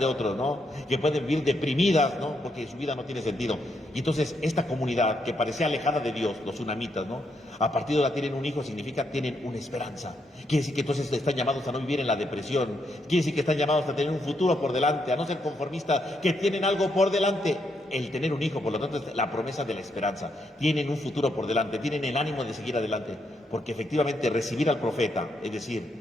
otros, ¿no? Que pueden vivir deprimidas, ¿no?, porque su vida no tiene sentido. Y entonces esta comunidad que parecía alejada de Dios, los sunamitas, ¿no?, a partir de ahora tienen un hijo, significa tienen una esperanza. Quiere decir que entonces están llamados a no vivir en la depresión, quiere decir que están llamados a tener un futuro por delante, a no ser conformistas, que tienen algo por delante. El tener un hijo, por lo tanto, es la promesa de la esperanza. Tienen un futuro por delante, tienen el ánimo de seguir adelante, porque efectivamente recibir al profeta, es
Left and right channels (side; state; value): both; normal; correlation 0.78